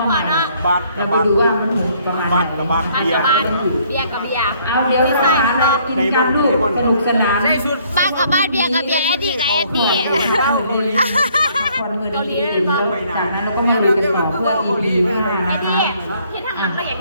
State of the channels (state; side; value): inverted; both; correlation -0.64